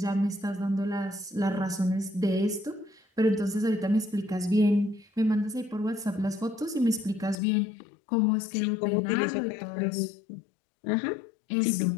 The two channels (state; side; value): drops out; right; at 7.4 s